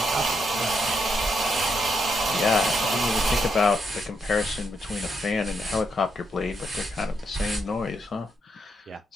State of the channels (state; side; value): normal; both; correlation 0.79